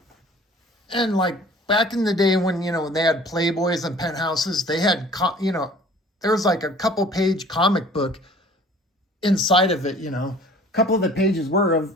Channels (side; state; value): both; normal; correlation 0.50